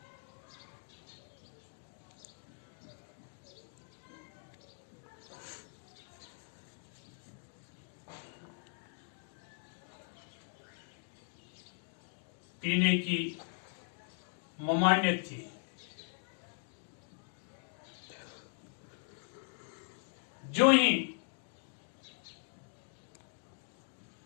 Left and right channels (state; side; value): silent; right; 51 dB below the other